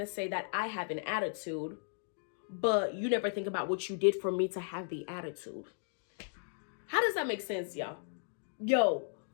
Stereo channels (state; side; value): silent; right; digital silence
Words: to say that I have an attitude, but you never think about what you did for me to have the attitude? How does that make sense, y'all? Yo,